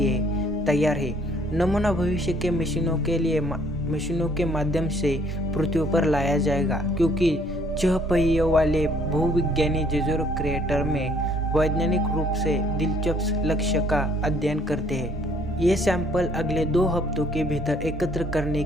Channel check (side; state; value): both; normal; correlation 0.63